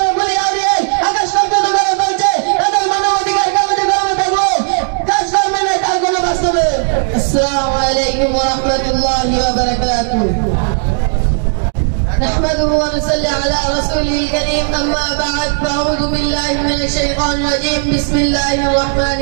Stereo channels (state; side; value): silent; left; 57 dB below the other